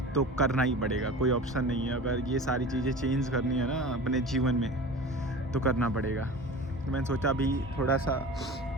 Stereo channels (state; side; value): normal; both; correlation 0.35